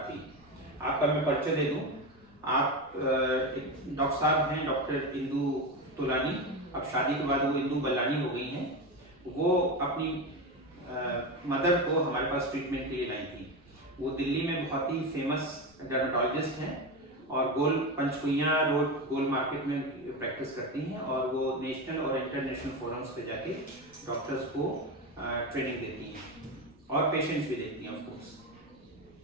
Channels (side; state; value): left; noise; rumble, 30 dB below the sound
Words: थी। आपका मैं परिचय दे दूं, आप डॉक्टर साहब हैं डॉक्टर इंदु तोलानी। अब शादी के बाद वो इंदु बल्लानी हो गई हैं। वो अपनी मदर को हमारे पास ट्रीटमेंट के लिए लाई थी। वो दिल्ली में बहुत ही फेमस डर्मेटोलॉजिस्ट हैं और गोल पंचकुइया रोड गोल मार्केट में प्रैक्टिस करती हैं और वो नेशनल और इंटरनेशनल फोरम्स पे जाके डॉक्टर्स को ट्रेनिंग देती हैं और पेशेंट्स भी देखती हैं ऑफ कोर्स।